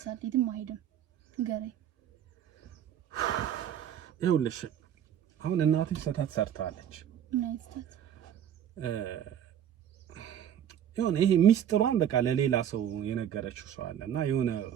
የትም አይሄድም። ንገረኝ። ይኸውልሽ አሁን እናትሽ ስህተት ሰርታለች። የሆነ ይሄ ሚስጥሯን በቃ ለሌላ ሰው የነገረችው ሰው አለና የሆነ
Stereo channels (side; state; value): left; quieter; 9.7 dB